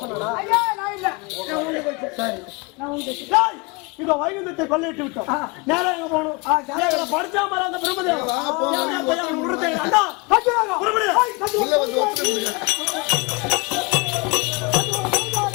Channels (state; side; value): quieter; right; 27.5 dB